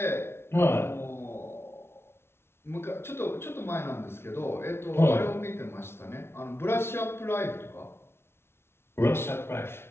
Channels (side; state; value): right; late; 0.12 ms